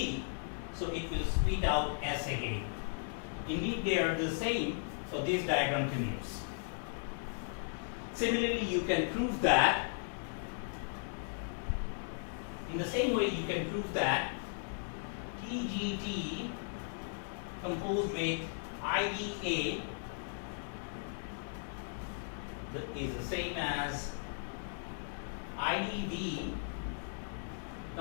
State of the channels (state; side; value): silent; right; digital silence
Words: so it will spit out S again. Indeed, they are the same, so this diagram commutes. Similarly, you can prove that, in the same way you can prove that TGT composed with IDA is the same as IDV